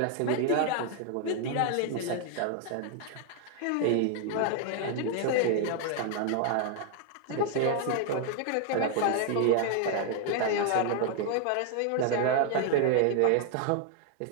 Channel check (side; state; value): both; different; correlation 0.00